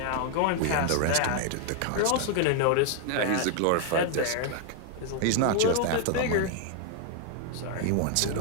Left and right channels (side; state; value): both; different; correlation 0.00